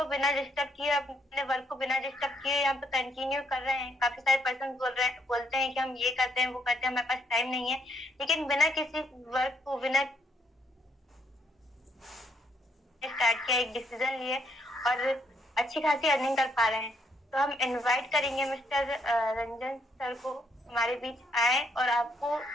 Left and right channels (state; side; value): normal; both; correlation 0.72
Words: बिना डिस्टर्ब किए, अपने वर्क को बिना डिस्टर्ब किए यहाँ पे कंटिन्यू कर रहे हैं। काफी सारे पर्सन बोलते हैं कि हम ये करते हैं, वो करते हैं, हमारे पास टाइम नहीं है, लेकिन बिना किसी वर्क को, बिना स्टार्ट किया, एक डिसीजन लिए और अच्छी खासी अर्निंग कर पा रहे हैं। तो हम इनवाइट करेंगे मिस्टर रंजन सर को हमारे बीच आए, और आपको